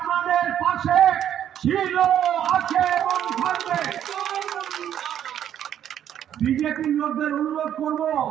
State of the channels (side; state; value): left; quieter; 10.2 dB